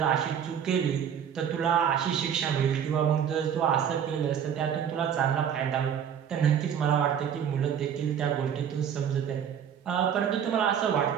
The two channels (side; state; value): left; quieter; 8.4 dB